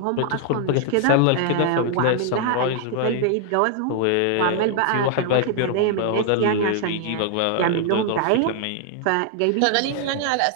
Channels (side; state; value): both; different; correlation 0.00